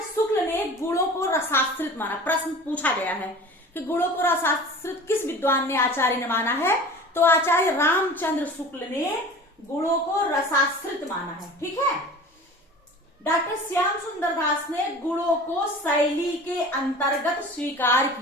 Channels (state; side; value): normal; both; correlation 0.40